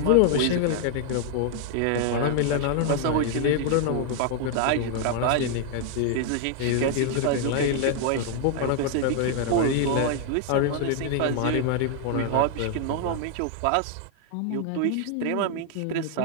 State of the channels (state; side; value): different; both; correlation 0.00